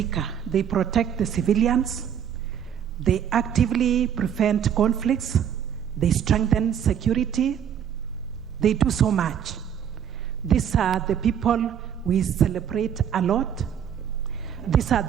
they protect the civilians, they actively prevent conflicts, they strengthen security, they do so much. These are the people we celebrate a lot. These are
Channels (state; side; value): quieter; left; 8.7 dB